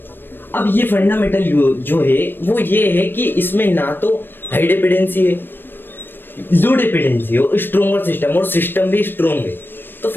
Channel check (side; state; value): right; late; 0.096 ms